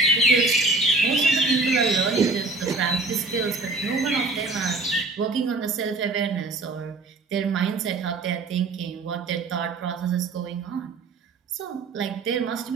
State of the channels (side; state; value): left; quieter; 3.4 dB